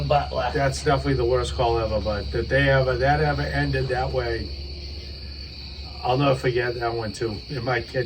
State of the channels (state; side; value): identical; both; correlation 1.00